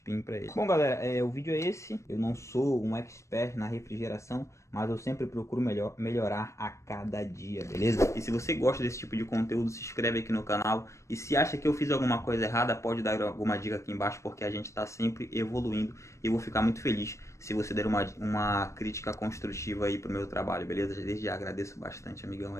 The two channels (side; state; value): right; late; 0.14 ms